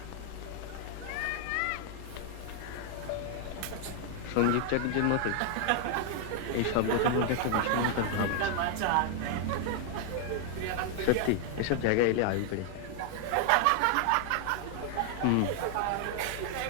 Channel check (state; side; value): different; both; correlation 0.00